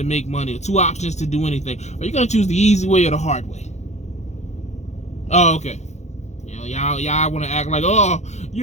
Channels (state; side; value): late; right; 0.33 ms